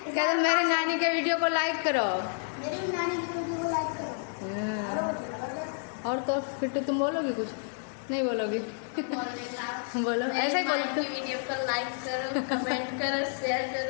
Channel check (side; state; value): right; silent; digital silence